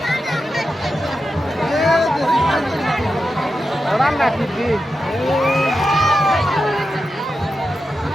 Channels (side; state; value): both; normal; correlation 0.90